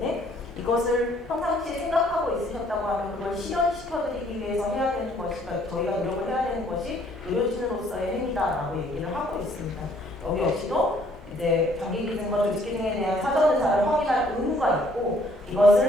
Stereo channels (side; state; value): both; normal; correlation 0.63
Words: 이것을 평상시에 생각하고 있으셨다고 하면 그걸 실현시켜드리기 위해서 해야 되는 것이니까 저희가 노력을 해야 되는 것이 의료진으로서의 행위다라고 얘기를 하고 있습니다. 여기 역시도 이제 장기기증과 조직기증에 대한 사전 의사를 확인할 의무가 있고